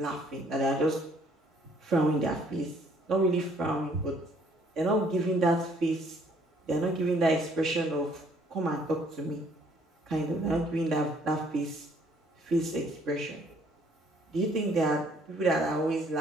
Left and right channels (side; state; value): both; normal; correlation 0.63